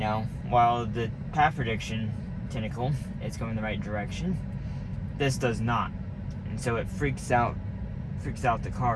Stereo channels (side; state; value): both; identical; correlation 1.00